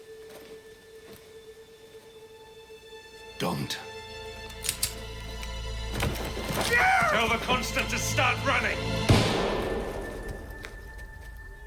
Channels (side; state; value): both; identical; correlation 1.00